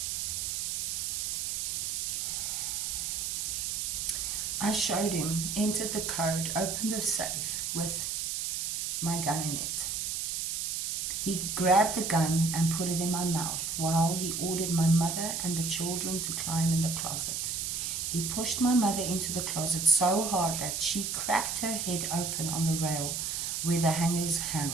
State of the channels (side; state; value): right; noise; hiss, 2 dB below the sound